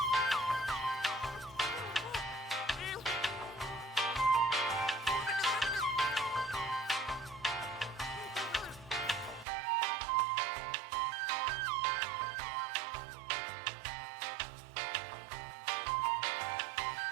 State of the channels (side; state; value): left; drops out; at 9.5 s